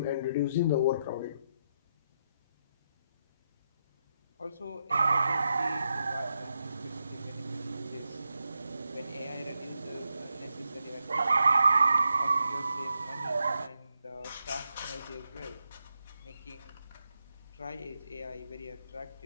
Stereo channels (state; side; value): inverted; both; correlation -0.83